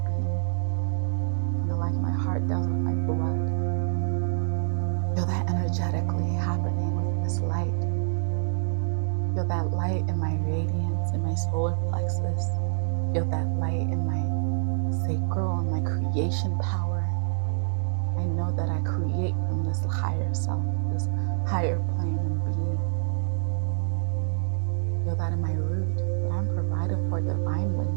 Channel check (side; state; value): left; silent; digital silence